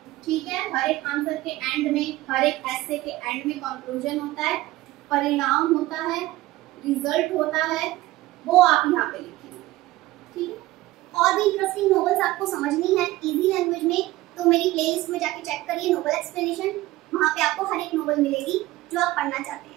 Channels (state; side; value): quieter; left; 17.6 dB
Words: ठीक है। हर एक आंसर के एंड में, हर एक एसे के एंड में कंक्लूजन होता है, परिणाम होता है, रिजल्ट होता है, वो आप यहाँ पे लिखेंगे, ठीक है। और भी इंटरेस्टिंग नॉवेल्स आपको समझनी है इजी लैंग्वेज में, तो मेरी प्लेलिस्ट में जाके चेक करिए नोवेल एक्सप्लेनेशन। वहाँ पे आपको हर एक नोवेल मिलेगी जो आप पढ़ना चाहते